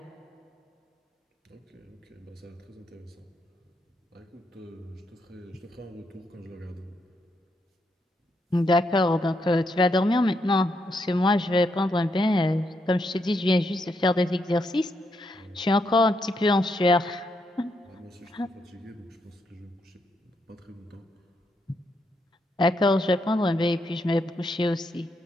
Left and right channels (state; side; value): normal; both; correlation 0.79